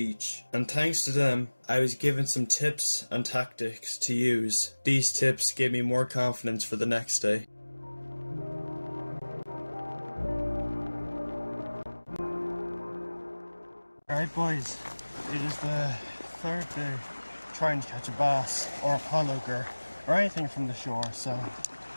and thanks to them, I was given some tips and tactics to use. These tips gave me more confidence for the next day. Alright boys, it is the third day trying to catch a bass or a pollock or anything from the shore, so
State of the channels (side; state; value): both; inverted; correlation -1.00